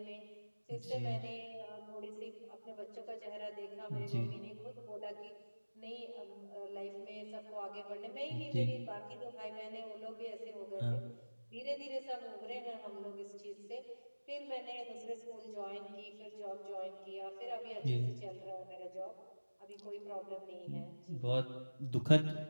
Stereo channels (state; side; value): inverted; both; correlation -1.00